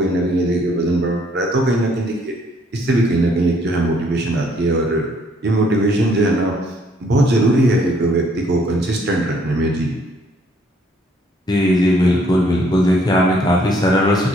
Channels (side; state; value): both; normal; correlation 0.65